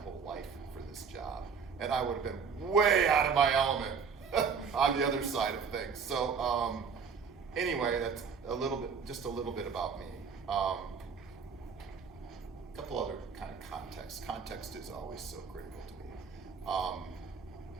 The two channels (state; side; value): quieter; left; 6.0 dB